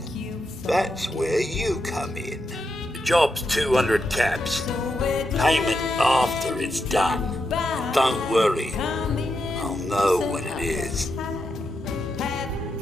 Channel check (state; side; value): normal; both; correlation 0.84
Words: That's where you come in. The job's 200 caps. Payment after it's done. Don't worry. I'll know when it is.